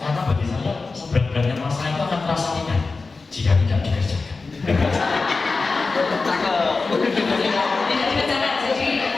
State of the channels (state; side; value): quieter; right; 4.0 dB